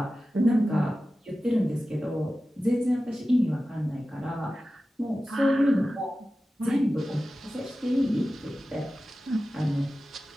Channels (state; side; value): normal; both; correlation 0.95